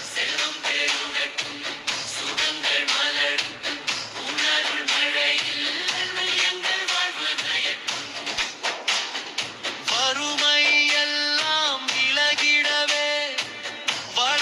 செல்வம் பெருகட்டும் சுகங்கள் மலரும் உன்னருள் மழையில் எங்கள் வாழ்வு நயக்கும். வறுமை எல்லாம் விலகிடவே,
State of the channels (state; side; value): identical; both; correlation 1.00